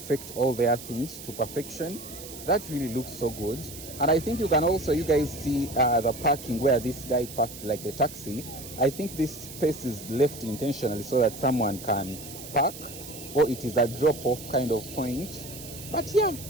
all their things to perfection. That really looks so good. And I think you can also, you guys see the parking where this guy parked like the taxi. I think this space is left intentionally so that someone can park, or it is a drop-off kind of point. But yeah,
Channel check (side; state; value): right; noise; hiss, 13 dB below the sound